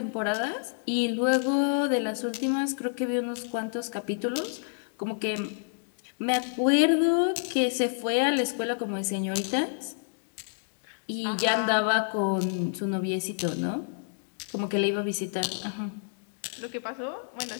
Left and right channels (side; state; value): right; silent; digital silence